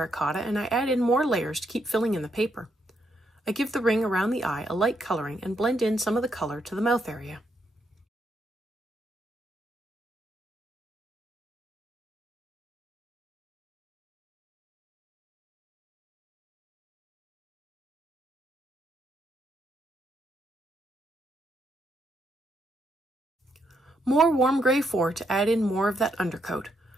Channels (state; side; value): normal; both; correlation 0.77